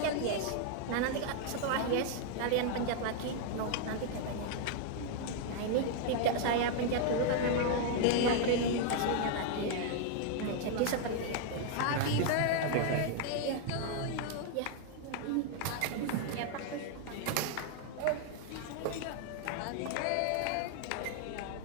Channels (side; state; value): both; different; correlation 0.00